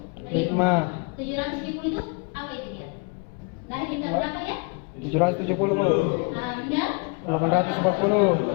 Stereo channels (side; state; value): right; quieter; 32.8 dB